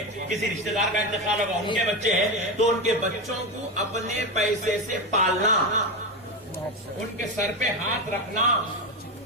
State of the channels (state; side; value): normal; both; correlation 0.16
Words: کسی رشتہ دار کا انتقال ہوگا ان کے بچے ہیں، تو ان کے بچوں کو اپنے پیسے سے پالنا، ان کے سر پہ ہاتھ رکھنا،